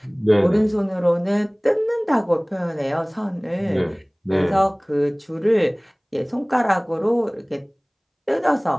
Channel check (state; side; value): identical; both; correlation 1.00